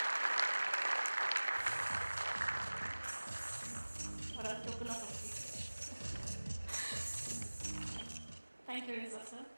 Thank you, Reza sir.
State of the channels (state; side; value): inverted; both; correlation -1.00